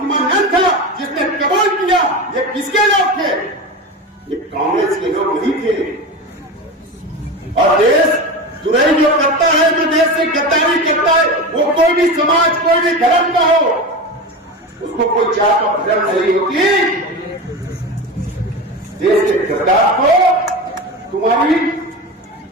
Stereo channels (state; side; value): normal; both; correlation 0.25